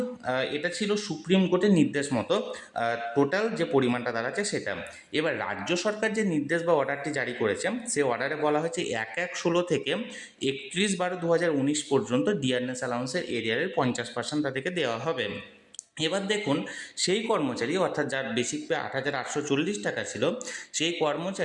এটা ছিল সুপ্রিম কোর্টের নির্দেশ মতো টোটাল যে পরিমাণটা দাঁড়াচ্ছে সেটা। এবার রাজ্য সরকার যে নির্দেশ বা অর্ডারটি জারি করেছে সে অর্ডারে বলা হয়েছে 1/1/16 থেকে 31/12/2019 পর্যন্ত ডিআরএস অ্যালাউন্সের এরিয়ারের 50% তাদেরকে দেওয়া হবে। এবার দেখুন, সেই কর্মচারী অর্থাৎ যার বেসিক পে 8,840 টাকা ছিল, সেই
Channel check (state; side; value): identical; both; correlation 1.00